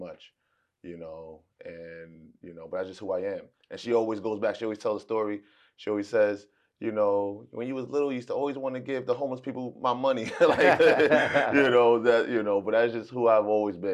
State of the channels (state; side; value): identical; both; correlation 1.00